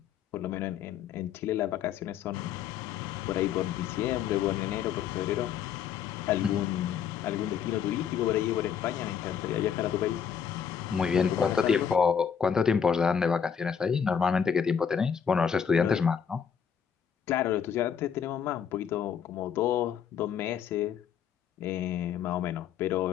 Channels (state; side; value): quieter; right; 7.7 dB